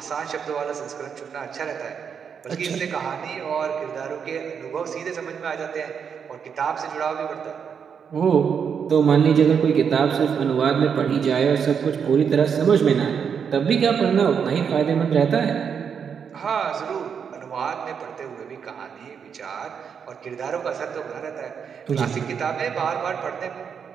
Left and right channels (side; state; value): left; quieter; 7.0 dB